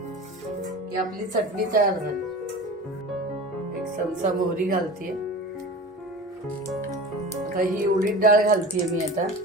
की आपली चटणी तयार झाली. 1 चमचा मोहरी घालतीये. आता ही उडीद डाळ घालतीये मी आता.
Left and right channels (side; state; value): both; normal; correlation 0.34